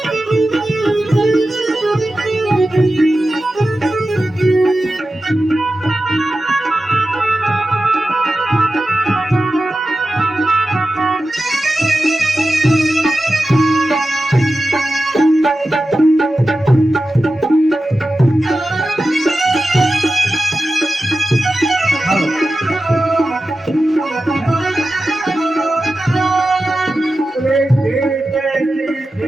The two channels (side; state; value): both; normal; correlation 0.93